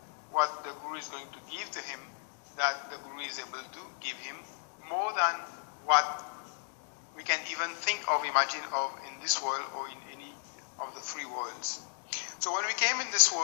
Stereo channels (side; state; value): right; silent; digital silence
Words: what the Guru is going to give to him, that the Guru is able to give him more than what we can even think of, imagine of in this world or in any of the three worlds. So when we came in this